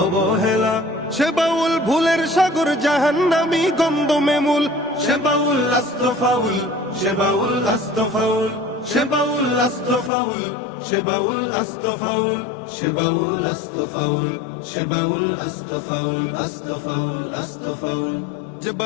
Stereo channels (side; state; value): right; drops out; at 10.1 s